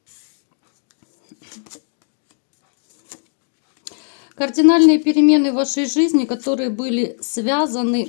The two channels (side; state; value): right; silent; digital silence